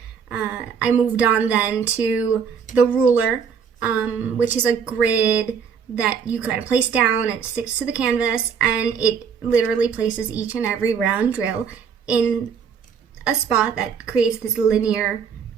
I moved on then to the ruler, which is a grid that you kind of place down and it sticks to the canvas, and it literally places each and every round drill in a spot that creates this linear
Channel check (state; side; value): quieter; left; 6.7 dB